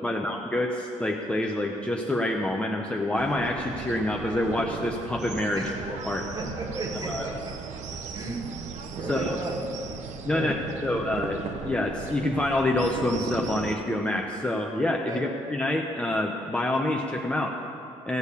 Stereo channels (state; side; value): normal; both; correlation 0.73